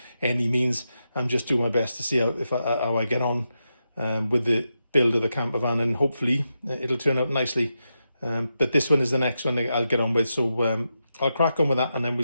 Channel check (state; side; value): inverted; both; correlation -0.87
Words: any means. I'm just doing my best to see how I get on with the build of the camper van, and hopefully it'll turn out nicely. But this one is the next one I'll get on with, so I'll crack on with that and then